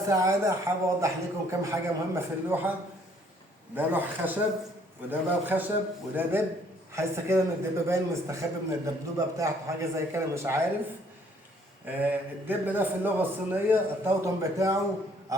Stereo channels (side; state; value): both; normal; correlation 0.63